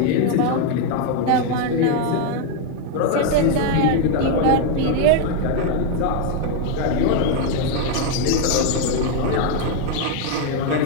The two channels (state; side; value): different; both; correlation 0.01